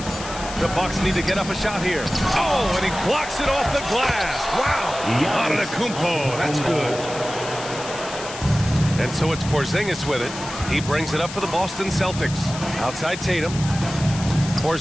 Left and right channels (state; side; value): noise; left; hiss, 11 dB below the sound